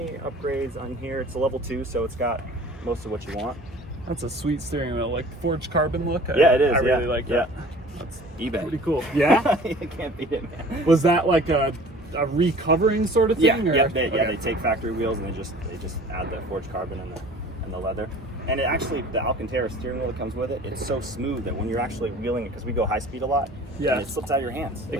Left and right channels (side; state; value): both; normal; correlation 0.46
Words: upgrades on here. It's a level 2, so it's got most of what you want. That's a sweet steering wheel, like forged carbon look. Yeah, it is. I really like yeah. that. That's eBay. Pretty cool. Yeah? You can't beat it, man. Was that like a recovering sort of thing? Yeah, or? they take factory wheels and they just add the forged carbon and the leather. And it actually, the Alcantara steering wheel that comes with it, it's so smooth that when you're actually wheeling it, because we go high speed a lot, yeah, and it slips out of your hands. It